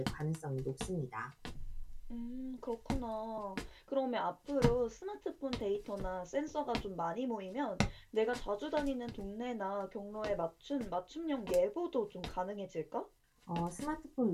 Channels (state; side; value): identical; both; correlation 1.00